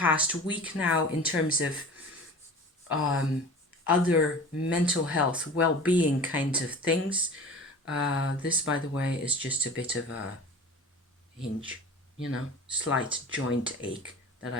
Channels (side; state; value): both; normal; correlation 0.38